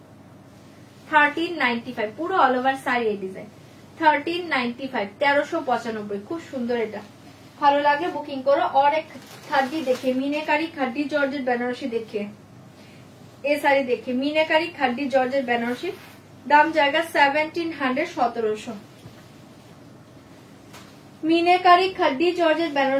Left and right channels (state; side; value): identical; both; correlation 1.00